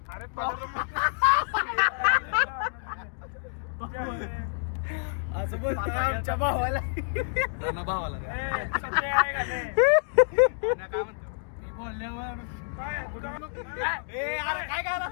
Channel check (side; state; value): right; silent; digital silence